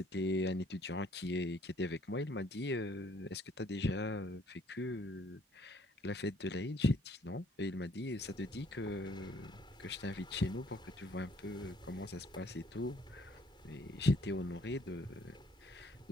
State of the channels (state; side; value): normal; both; correlation 0.62